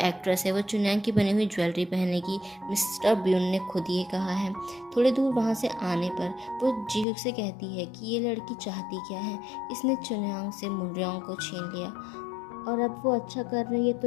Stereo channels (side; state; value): right; drops out; at 7.1 s